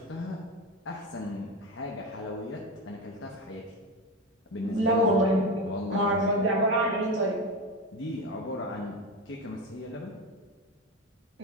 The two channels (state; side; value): normal; both; correlation 0.20